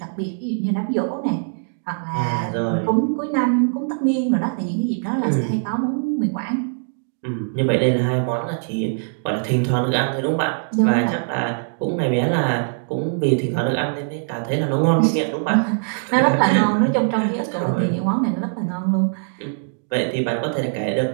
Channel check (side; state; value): left; silent; digital silence